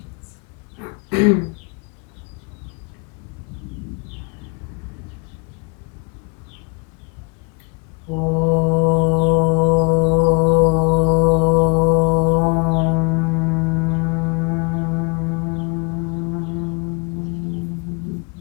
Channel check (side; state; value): right; quieter; 31.2 dB